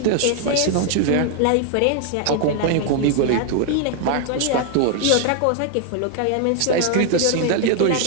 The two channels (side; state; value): both; different; correlation 0.00